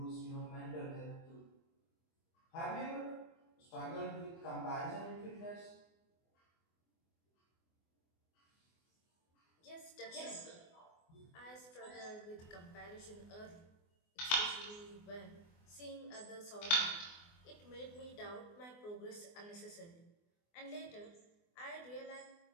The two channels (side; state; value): right; late; 24 ms